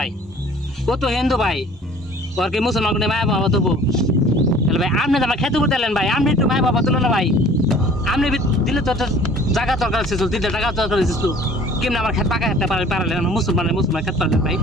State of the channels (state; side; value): normal; both; correlation 0.50